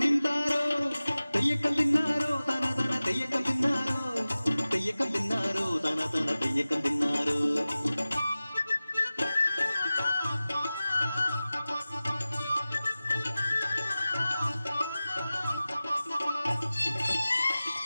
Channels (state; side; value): inverted; both; correlation -0.96